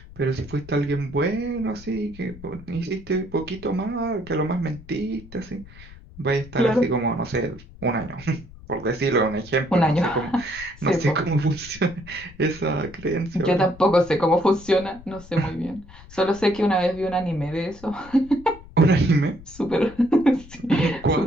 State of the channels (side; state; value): left; noise; rumble, 19 dB below the sound